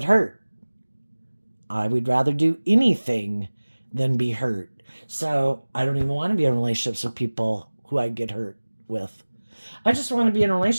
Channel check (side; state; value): both; inverted; correlation -1.00